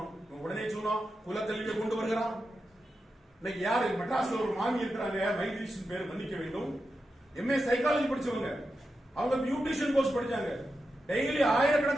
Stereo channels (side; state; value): both; normal; correlation 0.89